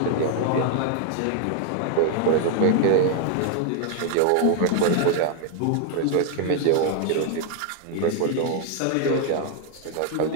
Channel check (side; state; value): both; different; correlation 0.00